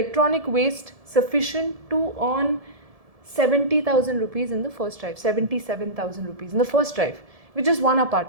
waste sufficient to earn 70,000 rupees in the first drive, 77,000 rupees in the first drive, with just one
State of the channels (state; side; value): late; left; 1.7 ms